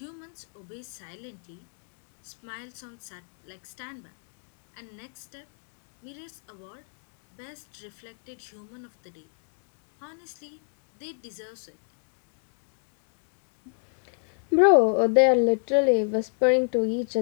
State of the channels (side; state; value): right; silent; 58 dB below the other